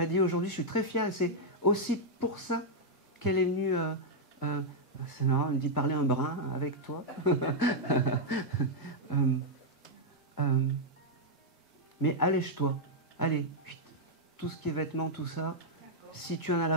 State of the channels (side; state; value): both; normal; correlation -0.04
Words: dit aujourd'hui, je suis très fière, et c'est aussi pour ça qu'elle est venue. C'est marrant, elle me dit parler un brin avec toi. Mais allège-toi, allez, tout ce qui est vêtements, tout ça, si tu en as